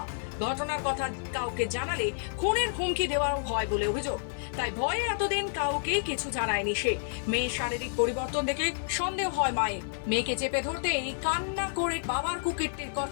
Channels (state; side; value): silent; right; 58 dB below the other